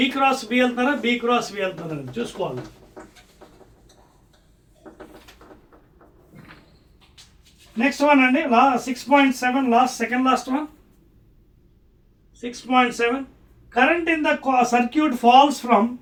క్రాస్ బి వెళ్తారా, బి క్రాస్ బి వెళ్తారా అని చూసుకోవాలి. నెక్స్ట్ వన్ అండి, 6.7 second last one. 6.7 current in the circuit falls from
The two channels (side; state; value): both; identical; correlation 1.00